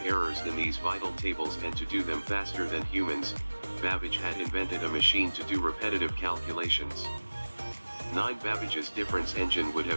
errors in these vital tables and to do them faster than humans, Babbage had invented a machine to do repetitive calculations. 9 Babbage's difference engine would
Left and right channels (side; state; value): both; inverted; correlation -1.00